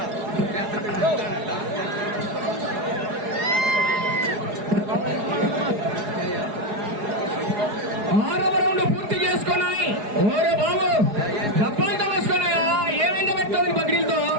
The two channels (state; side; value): late; left; 4.8 ms